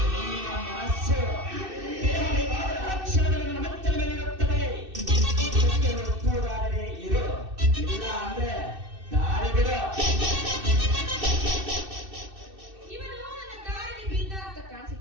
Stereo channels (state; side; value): late; left; 2.6 ms